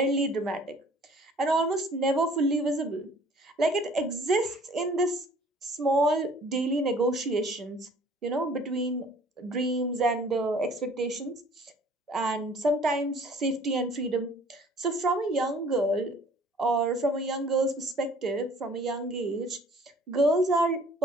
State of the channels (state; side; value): normal; both; correlation 0.53